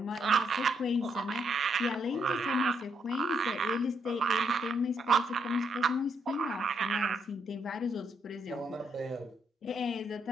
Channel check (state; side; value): normal; both; correlation 0.76